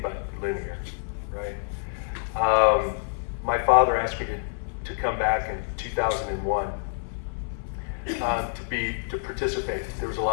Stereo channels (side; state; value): right; silent; 60 dB below the other